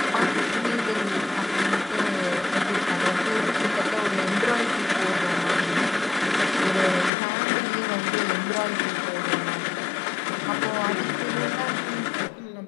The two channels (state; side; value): drops out; right; at 7.1 s